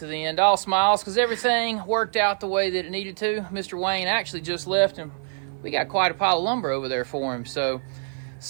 the end. All smiles because everything worked out the way that it needed to. Mr. Wayne actually just left, and we got quite a pile of lumber over there for him. So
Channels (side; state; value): left; silent; digital silence